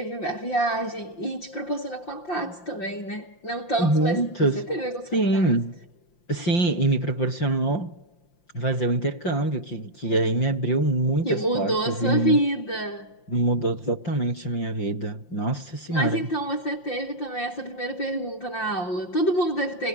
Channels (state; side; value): late; right; 5.7 ms